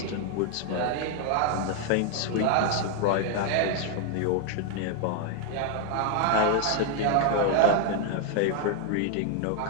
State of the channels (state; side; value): different; both; correlation 0.00